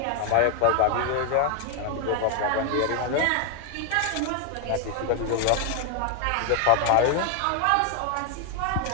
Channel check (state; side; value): different; both; correlation 0.00